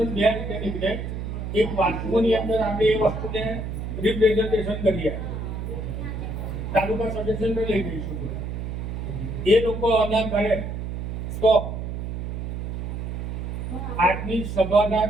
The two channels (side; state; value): right; noise; hum, 5 dB below the sound